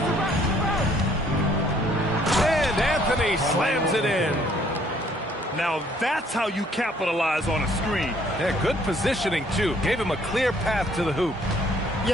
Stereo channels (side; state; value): both; normal; correlation 0.62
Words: And Anthony slams it in. Now that's how you capitalize on a screen. Yeah, good positioning too. Gave him a clear path to the hoop.